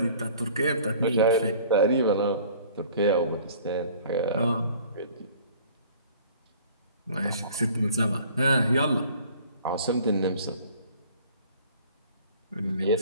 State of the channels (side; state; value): both; inverted; correlation -0.49